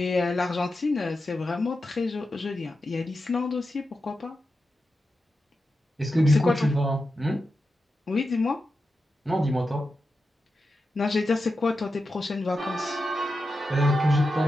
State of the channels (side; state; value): both; normal; correlation 0.90